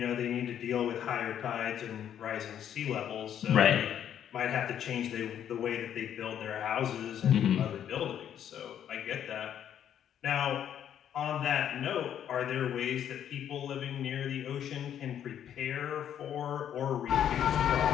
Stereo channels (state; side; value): quieter; right; 9.8 dB